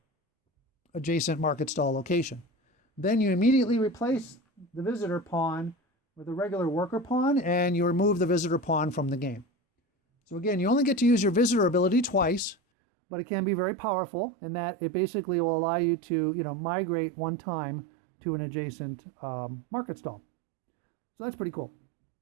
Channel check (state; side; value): drops out; left; at 12.6 s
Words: adjacent market stall location. Then you immediately replace the visitor pawn with a regular worker pawn, and you remove the visitor pawn from the game. So again, you only get to use your visitor ability twice, but it can be very powerful in that it basically will allow you to, migrate one time to an adjacent market stall. So that's pretty cool.